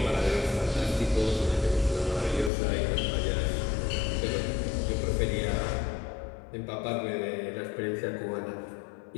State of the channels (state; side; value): drops out; right; at 2.5 s